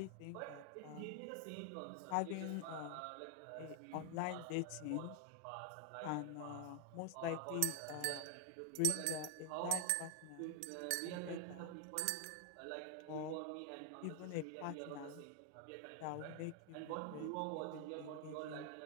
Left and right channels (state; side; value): different; both; correlation 0.00